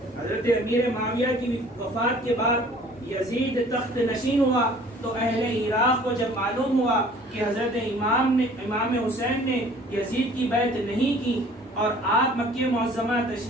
حضرت امیر معاویہ کی وفات کے بعد یزید تخت نشین ہوا تو اہل عراق کو جب معلوم ہوا کہ حضرت امام حسین نے یزید کی بیعت نہیں کی اور آپ مکہ معظمہ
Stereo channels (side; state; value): both; normal; correlation 0.52